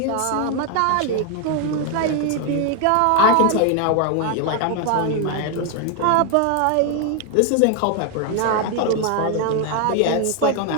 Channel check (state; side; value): different; both; correlation 0.01